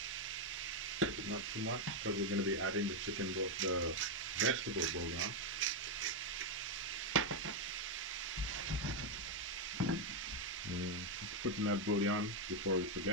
not too much because we're going to be adding the vegetable bouillon. Putting that bouillon before we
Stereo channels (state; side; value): normal; both; correlation 0.02